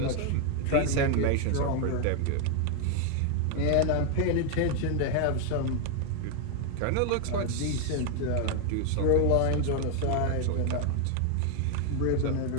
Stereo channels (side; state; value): both; different; correlation 0.01